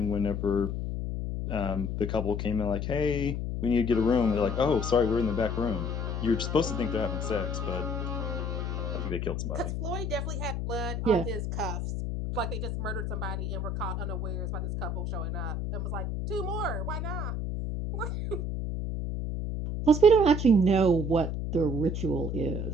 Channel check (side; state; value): left; noise; hum, 2 dB below the sound